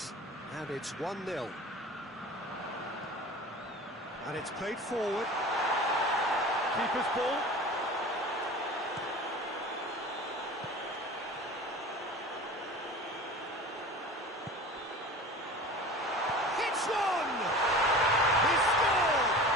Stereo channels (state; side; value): normal; both; correlation 0.37